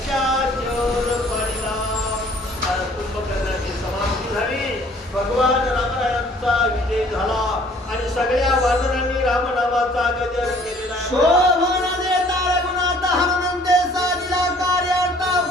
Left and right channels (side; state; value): both; normal; correlation 0.56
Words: पाडीला. कुंभकर्णाची समाप्ती झाली, भगवान रामरायांचा विजय झाला आणि सगळ्या वानरांनी रामनामाचा गजर केलेला. शोभन देता रघुनाथ हनुमंते साधिला कार्यार्थ